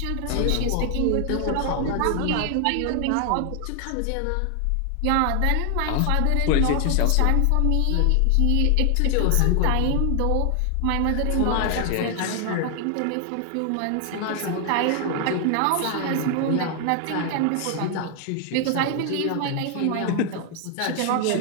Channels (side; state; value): both; different; correlation 0.00